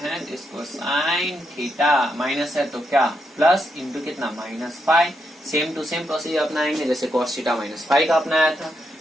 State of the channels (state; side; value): normal; both; correlation 0.81